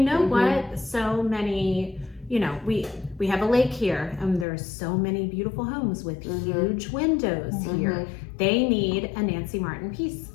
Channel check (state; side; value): drops out; right; at 4.5 s